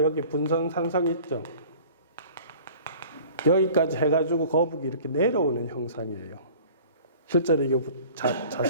여기 분선 산성 있죠. 여기까지 해가지고 거북이 이렇게 내려오는 형상이에요. 실제로 이거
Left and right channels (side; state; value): both; inverted; correlation -0.46